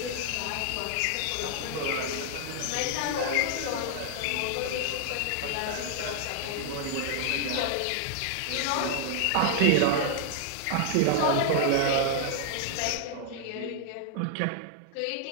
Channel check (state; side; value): different; both; correlation 0.00